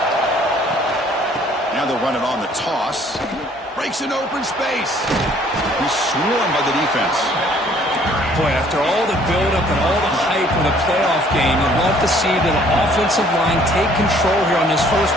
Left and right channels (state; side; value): normal; both; correlation 0.59